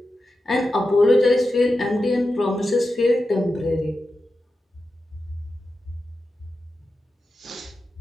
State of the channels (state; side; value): normal; both; correlation 0.91